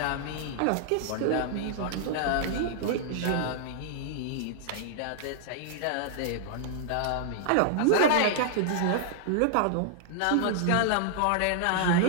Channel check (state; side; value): different; both; correlation -0.01